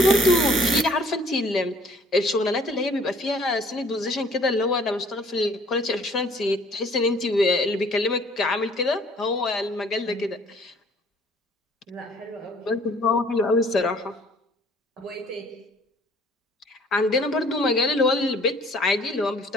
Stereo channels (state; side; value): normal; both; correlation 0.56